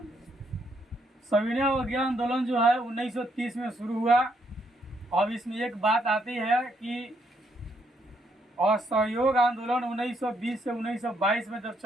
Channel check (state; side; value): normal; both; correlation 0.74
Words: सविनय अवज्ञा आंदोलन जो है 1930 में शुरू हुआ। अब इसमें एक बात आती है कि असहयोग आंदोलन 1920 से 1922 में जब